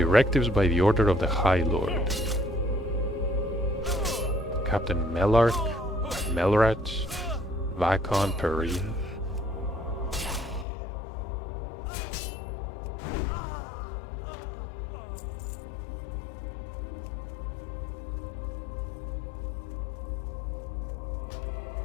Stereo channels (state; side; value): drops out; right; at 10.7 s